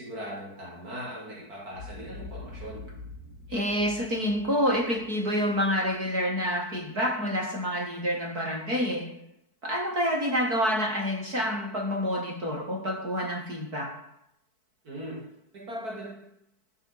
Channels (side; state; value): left; late; 4.6 ms